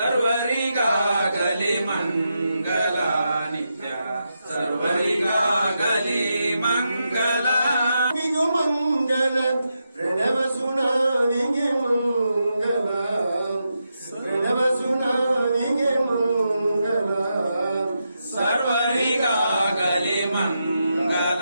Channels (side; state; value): both; inverted; correlation -0.85